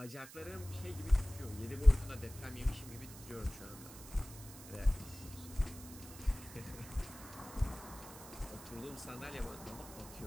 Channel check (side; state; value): right; noise; hiss, 15 dB below the sound